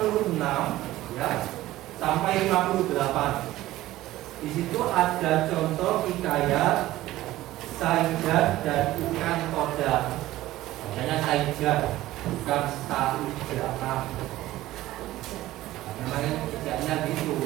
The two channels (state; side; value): quieter; left; 15.9 dB